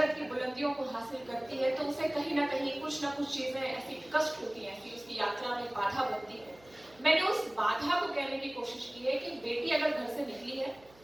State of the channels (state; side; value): noise; right; hum, 27 dB below the sound